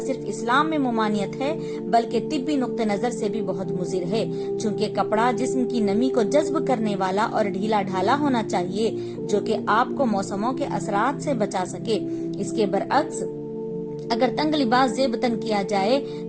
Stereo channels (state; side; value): identical; both; correlation 1.00